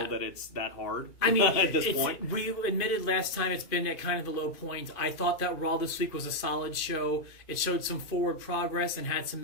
that it's that hard at this point. We admitted last time it's been at kind of the low point. I thought that Raw this week was a solid show. It showed some forward progress and had some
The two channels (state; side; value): late; right; 2.5 ms